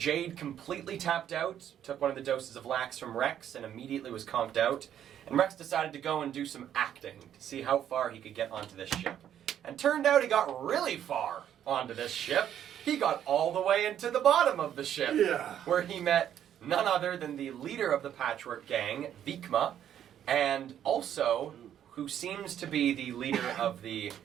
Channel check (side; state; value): left; quieter; 10.2 dB